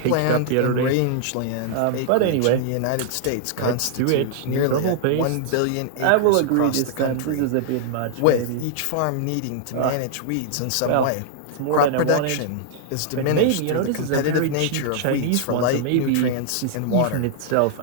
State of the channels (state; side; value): different; both; correlation -0.01